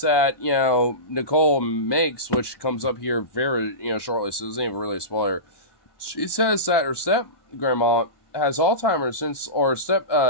that, you know, Nicole makes, which comes up here very, you know, shortly, so it isn't even really a spoiler. She says that her step-grandma has Alzheimer's or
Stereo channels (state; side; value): late; right; 1.2 ms